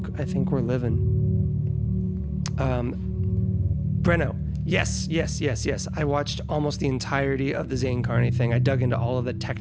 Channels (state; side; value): identical; both; correlation 1.00